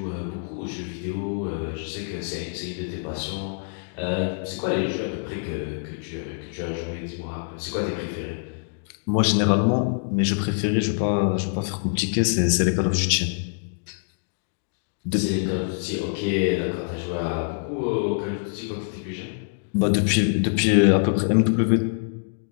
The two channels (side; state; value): right; silent; digital silence